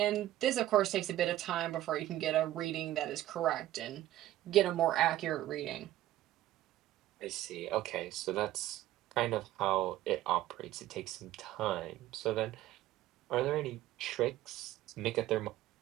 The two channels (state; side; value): quieter; left; 14.4 dB